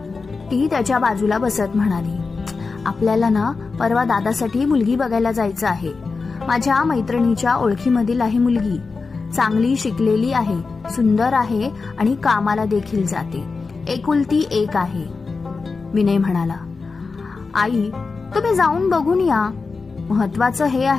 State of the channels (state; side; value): quieter; right; 4.4 dB